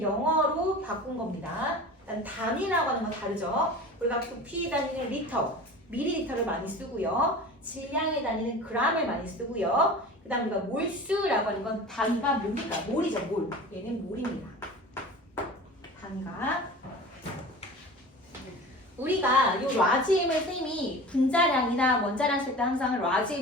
영어로 바꾼 겁니다. 일단 단위라고 하는 건 다르죠. 우리가 부피 단위는 리터, 밀리리터를 많이 쓰고요. 질량의 단위는 g을 많이 쓰고요. 그 다음 우리가 몰수라고 하는 건 단위가 뭡니까? 몰이죠, 몰. 얘는 몰입니다. 단위가. 우리가 요 라지엠을 쌤이 분자량이나 원자량 쓸 때 항상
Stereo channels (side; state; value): both; normal; correlation 0.37